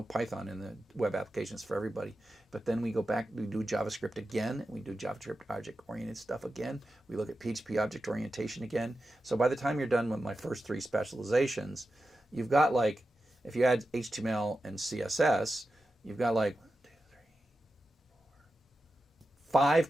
Python in the web applications for everybody. But then we go back, we do JavaScript again, we do JavaScript object-oriented stuff again. We look at PHP object orientation again. So by the time you're done with my first three specializations, you've got like, if you add HTML and CSS, you've got like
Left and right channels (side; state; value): both; normal; correlation 0.91